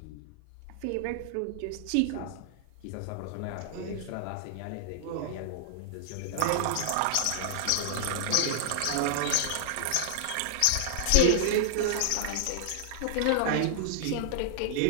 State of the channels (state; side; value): different; both; correlation -0.01